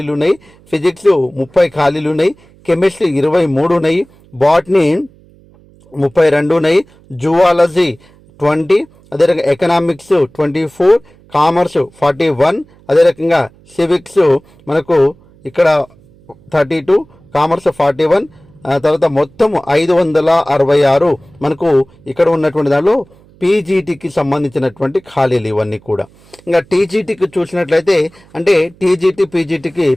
ఉన్నాయి. ఫిజిక్స్ 30 ఖాళీలు ఉన్నాయి. కెమిస్ట్రీ 23 ఉన్నాయి. బాటనీ 32 ఉన్నాయి. జువాలజీ 20, అదే రకంగా ఎకనామిక్స్ 24, కామర్స్ 41, అదే రకంగా సివిక్స్ మనకు ఇక్కడ 32, కామర్స్ 41, తర్వాత మొత్తం 566 మనకు ఇక్కడ ఉన్నటువంటి దానిలో పీజీటీకి సంబంధించినటువంటి ఖాళీలు ఇవన్నీ కూడా. ఇంకా టీజీటీకి చూసినట్లయితే అంటే టీజీటీ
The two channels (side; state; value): right; noise; hum, 28 dB below the sound